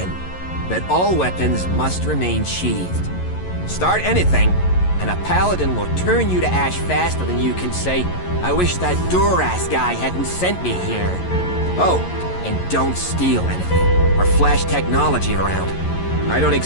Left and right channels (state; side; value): late; right; 11 ms